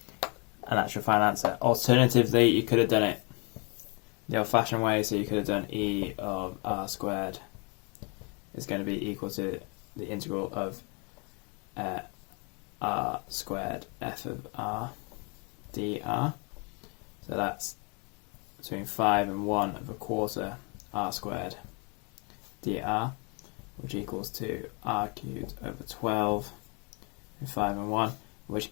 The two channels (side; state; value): right; quieter; 33.2 dB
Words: and that's your final answer. Alternatively, you could have done it the old-fashioned way, so you could have done e of r squared is going to be equal to the integral of r squared f of r dr, so that's between 5 and 1 of a quarter r squared dr, which equals to r cubed over 12 and 5 and 1, which